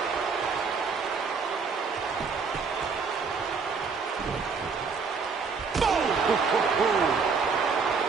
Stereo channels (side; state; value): left; quieter; 5.2 dB